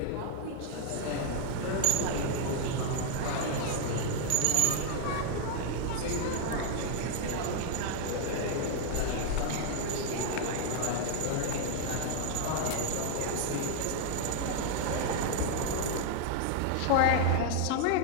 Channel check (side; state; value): both; different; correlation 0.00